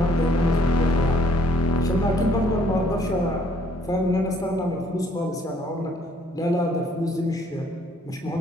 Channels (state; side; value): normal; both; correlation 0.64